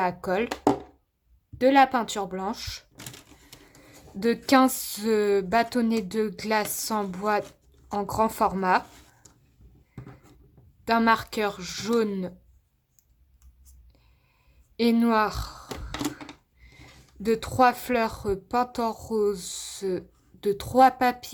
colle, de la peinture blanche, de 15 bâtonnets de glace en bois en grand format, d'un marqueur jaune et noir, de 3 fleurs peintes en rose, de 3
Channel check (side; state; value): both; identical; correlation 1.00